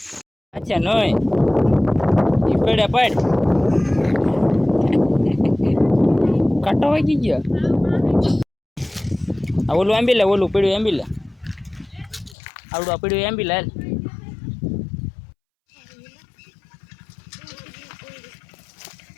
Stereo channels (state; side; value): drops out; right; at 12.4 s